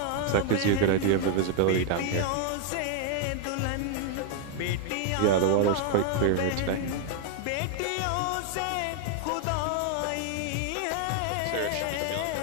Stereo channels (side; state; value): both; different; correlation 0.00